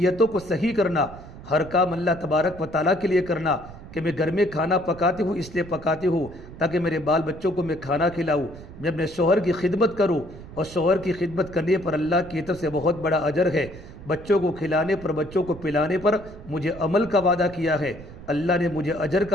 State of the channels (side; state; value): right; noise; rumble, 16 dB below the sound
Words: کو صحیح کرنا، ہر کام اللہ تبارک و تعالیٰ کے لیے کرنا، کہ میں گھر میں کھانا پکاتی ہوں اس لیے پکاتی ہوں تاکہ میرے بال بچوں کو میں کھانا کھلاؤں، میں اپنے شوہر کی خدمت کروں، اور شوہر کی خدمت کرنے پر اللہ کی طرف سے بہت بڑا اجر ہے، بچوں کو کھلانے پر بچوں کو پلانے پر مجھے عمل کا وعدہ کیا ہے، اللہ نے مجھے اجر